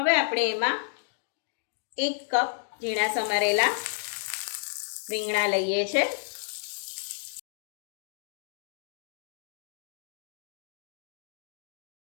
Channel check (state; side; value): silent; right; digital silence